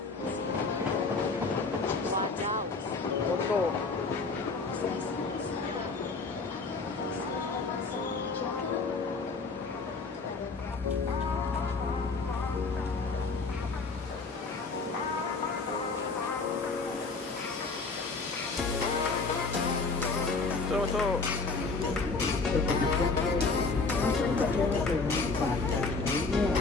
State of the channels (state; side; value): quieter; right; 4.1 dB